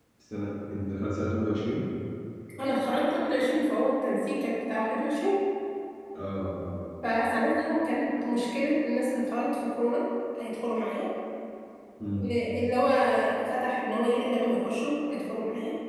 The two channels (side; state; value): both; identical; correlation 1.00